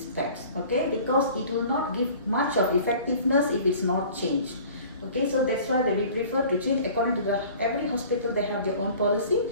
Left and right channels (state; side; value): inverted; both; correlation -0.47